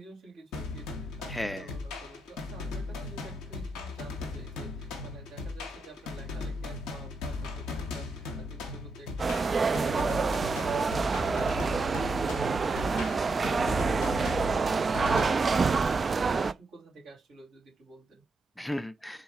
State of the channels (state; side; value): quieter; left; 3.0 dB